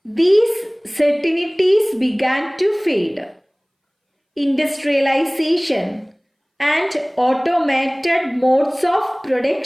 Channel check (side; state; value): both; identical; correlation 1.00